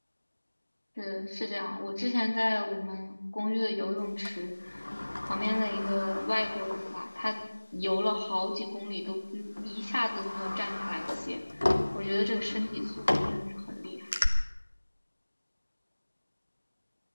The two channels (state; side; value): inverted; both; correlation -1.00